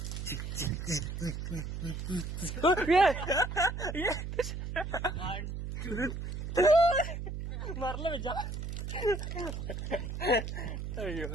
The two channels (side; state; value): right; noise; hum, 5 dB below the sound